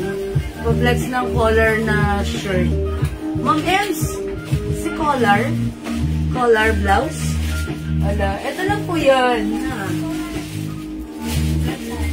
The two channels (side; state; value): both; identical; correlation 1.00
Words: Pa-flex ng collar na shirt. Ma'am Ems! Si collar? Collar blouse? Wala. Ito lang po yan. Ha?